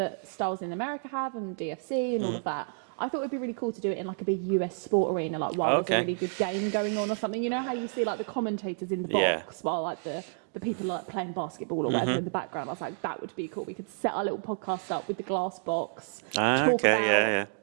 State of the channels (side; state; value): left; silent; digital silence